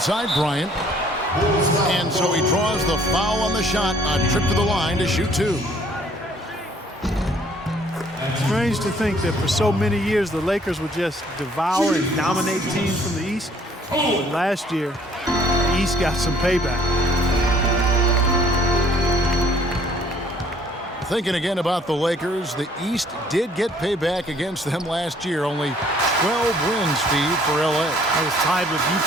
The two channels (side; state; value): both; normal; correlation 0.60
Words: Bryant. And so he draws the foul on the shot. A trip to the line to shoot 2. Strange to think that for so many years the Lakers would just devour and dominate teams from the East. But last year, the East got some payback. Thinking again about the Lakers, the East did get payback against them last year. Only 12 wins, Steve, for L.A. I was tied with